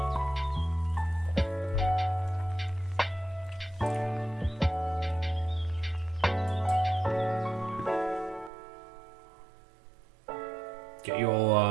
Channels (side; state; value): left; drops out; at 8.5 s